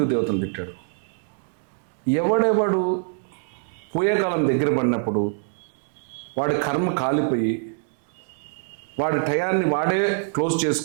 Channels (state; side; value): silent; left; digital silence